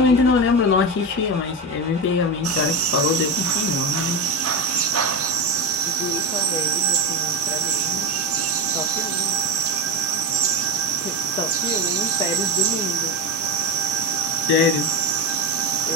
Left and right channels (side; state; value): both; normal; correlation 0.17